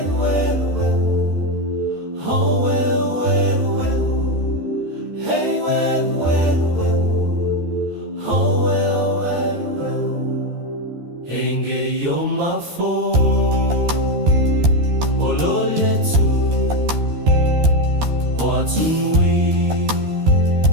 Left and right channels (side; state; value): left; late; 13 ms